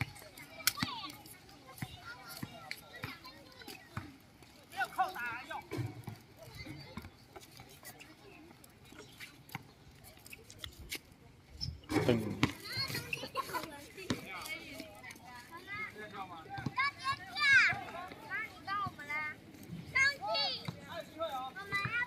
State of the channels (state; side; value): identical; both; correlation 1.00